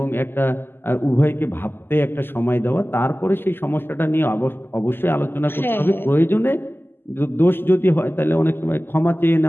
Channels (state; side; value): late; right; 0.10 ms